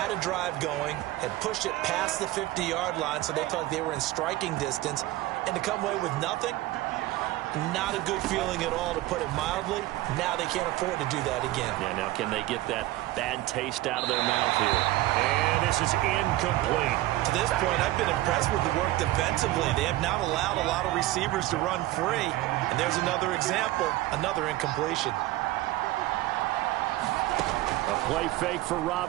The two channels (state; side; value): quieter; left; 17.1 dB